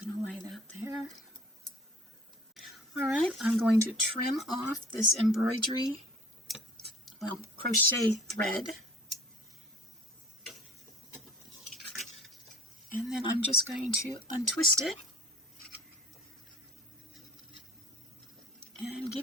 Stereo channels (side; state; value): both; normal; correlation 0.47